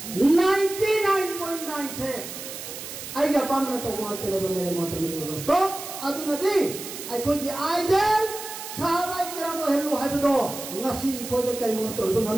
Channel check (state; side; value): noise; right; hiss, 10 dB below the sound